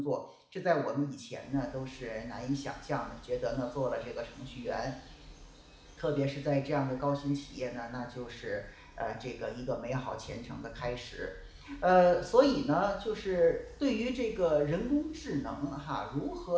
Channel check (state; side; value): identical; both; correlation 1.00